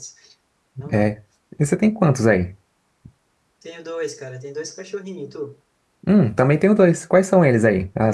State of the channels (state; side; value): identical; both; correlation 1.00